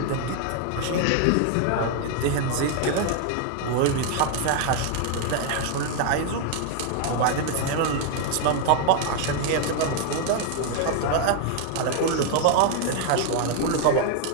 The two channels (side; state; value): both; different; correlation 0.00